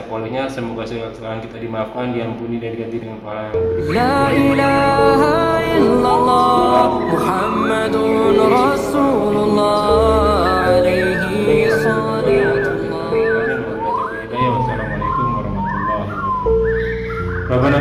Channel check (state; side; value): identical; both; correlation 1.00